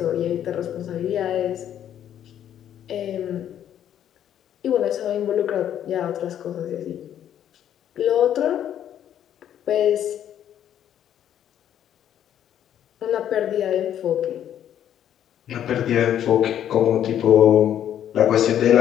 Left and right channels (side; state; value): right; quieter; 10.4 dB